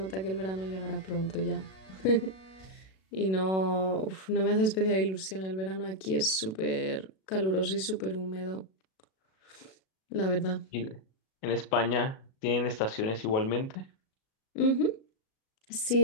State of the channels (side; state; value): right; late; 37 ms